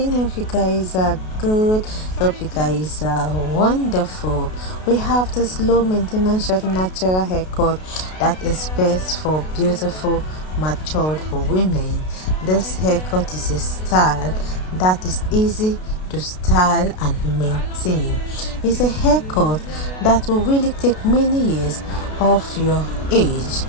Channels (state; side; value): late; right; 32 ms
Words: Hope you guys are good. Hope you guys are wonderful. We have this low maintenance short natural haircut that is best for beautiful matured women. This haircut is a style that is easy to style and maintain. It's a haircut that will really take many years off your age.